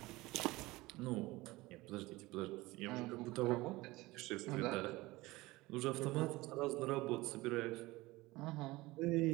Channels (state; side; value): quieter; left; 20.4 dB